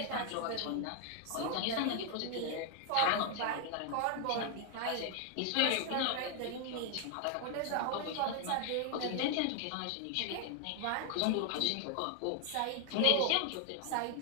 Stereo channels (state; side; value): different; both; correlation 0.00